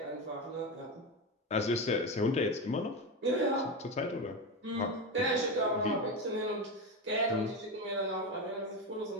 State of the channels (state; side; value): normal; both; correlation 0.16